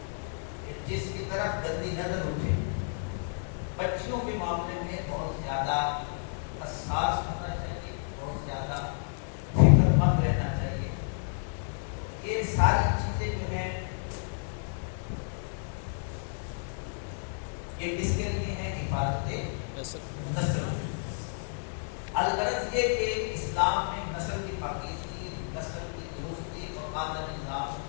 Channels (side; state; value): right; silent; digital silence